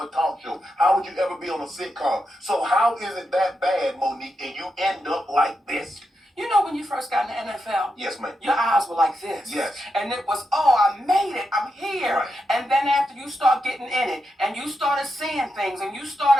talk show? How would you ever be on a sitcom? So how is it that bad, Monique, and you end up like this? You know when you first got in the NFL? Yes, ma'am. Your eyes were like this. Yes. And it was, oh, I made it. I'm here. Right. And then after you start getting in it, and you started seeing things, and you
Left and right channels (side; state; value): both; normal; correlation 0.86